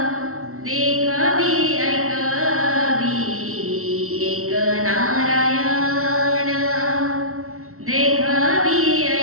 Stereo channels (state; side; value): late; left; 0.63 ms